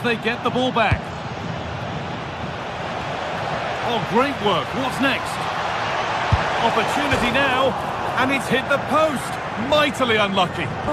they get the ball back. Oh, great work. What's next? Opportunity now, and it's hit the post. Mightily unlucky.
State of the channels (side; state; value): both; identical; correlation 1.00